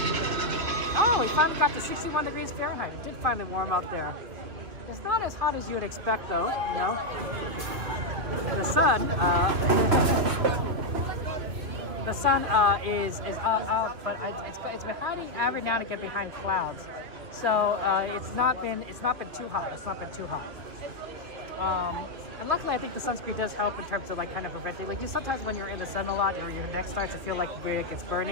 Oh, we finally got to 61 degrees Fahrenheit. It did finally warm up there. It's not as hot as you would expect, though. You know, the sun. The sun is out, but it's been hiding every now and again behind clouds. So it's not been too hot. It's not been too hot. And luckily, I think the sunscreen does help in terms of like kind of preventing. Like sometimes when you're in the sun a lot, or your neck starts to feel like it's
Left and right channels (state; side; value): late; left; 2.7 ms